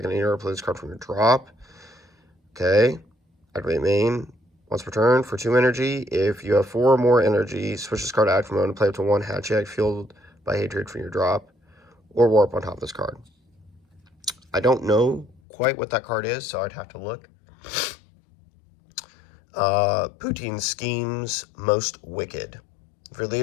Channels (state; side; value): drops out; right; at 15.4 s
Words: deck in any order, play this card from your drop. Okay. Activate main once per turn for 2 energy. If you have 4 or more energy, switch this card to active mode and play up to 1 Hatchet fueled by hatred from your drop, or warp on top of this card. I don't know quite what that card is, so I'd have to look. Poutine Schemes Most Wicked. If your